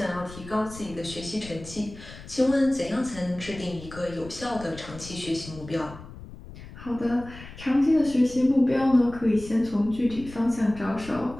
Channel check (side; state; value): left; noise; rumble, 16 dB below the sound